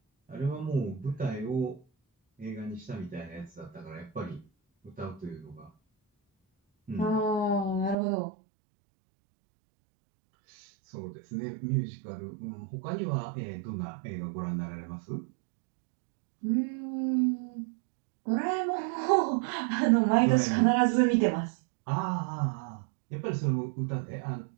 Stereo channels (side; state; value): left; drops out; at 8.0 s